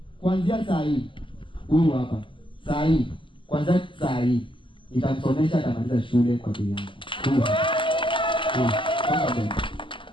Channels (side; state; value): right; late; 0.25 ms